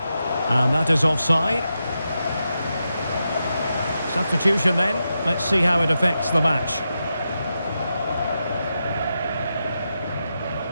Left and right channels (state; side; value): inverted; both; correlation -0.88